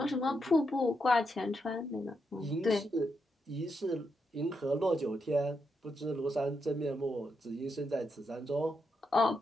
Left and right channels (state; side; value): normal; both; correlation 0.82